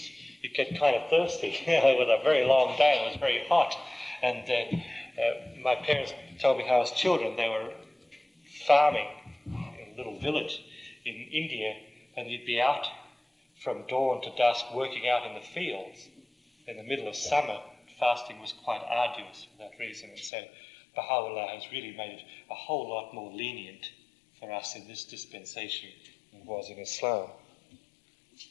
you'd get kind of thirsty, with a very long day, and it was very hot. And my parents told me how as children they were farming in a little village in India, and you'd be out from dawn to dusk working out in the fields. In the middle of summer, fasting was quite arduous for that reason, and so Baha'u'llah has really made it a whole lot more lenient for us in this dispensation than it was in Islam.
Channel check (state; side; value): drops out; right; at 20.3 s